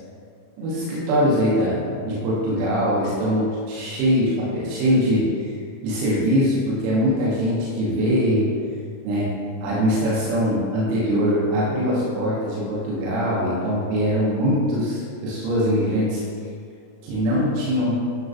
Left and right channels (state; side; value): late; left; 36 ms